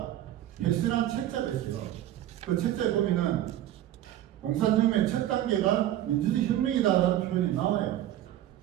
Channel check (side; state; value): left; quieter; 12.8 dB